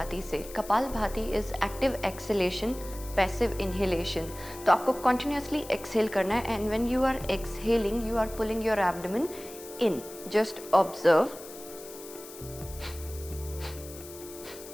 से. Kapalbhati is active exhalation, passive inhalation. तो आपको continuously exhale करना है and when you are exhaling you are pulling your abdomen in. Just observe.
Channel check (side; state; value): left; noise; hiss, 16 dB below the sound